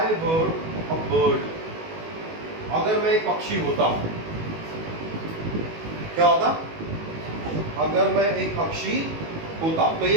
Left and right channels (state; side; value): late; left; 19 ms